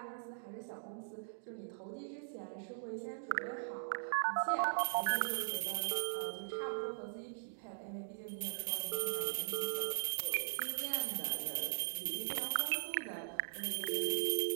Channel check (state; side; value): silent; left; digital silence